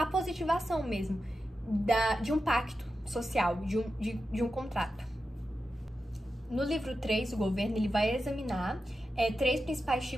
positivação mesmo de um pacto social, de um contrato. No livro 3, o governo, ele vai examinar 3 principais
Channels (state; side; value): normal; both; correlation 0.90